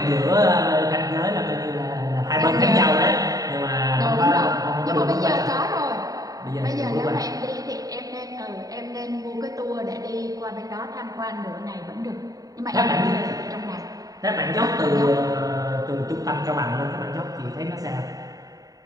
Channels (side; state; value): left; late; 0.18 ms